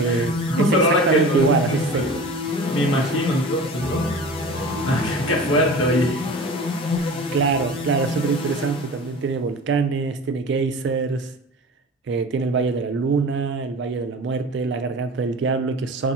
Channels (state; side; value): normal; both; correlation 0.37